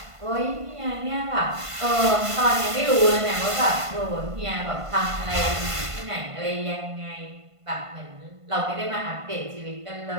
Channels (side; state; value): left; late; 1.5 ms